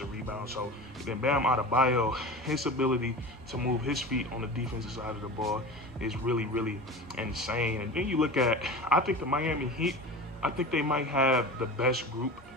rebounds. So then Bam Adebayo, his ability to move his feet on the defensive side of the ball is really insane. And then you look at, I think the Miami Heat, I think they might have the best group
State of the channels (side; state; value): both; normal; correlation 0.32